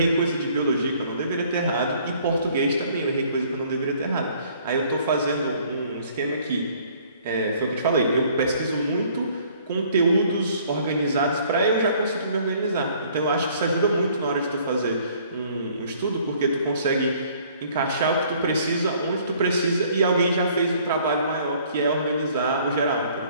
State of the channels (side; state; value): both; inverted; correlation -0.59